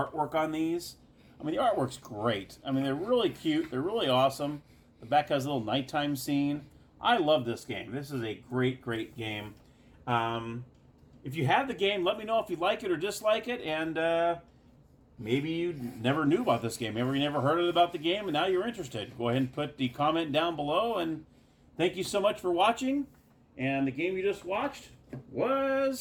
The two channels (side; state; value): both; identical; correlation 1.00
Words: on these. I mean, the artwork's great. I mean, they're really cute. They're really awesome. The back has a little nighttime scene. I love this game. This is a great, great game. If you have the game, let me know if you like it or dislike it. And maybe you never knew about this game. Maybe you never heard about the game, and now you're interested. Go ahead and put the comment down below. And thank you so much for watching. And the game you just watched